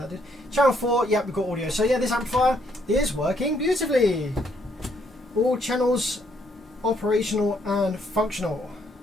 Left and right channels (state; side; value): normal; both; correlation 0.71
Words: did. Channel 4, yep, we've got audio. So yeah, this amplifier is working beautifully. All channels operational and functional.